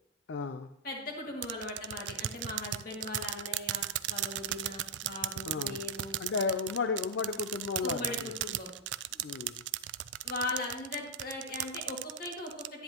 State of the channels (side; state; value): both; normal; correlation -0.03